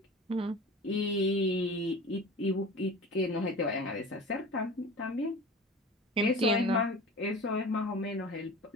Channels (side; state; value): both; normal; correlation 0.36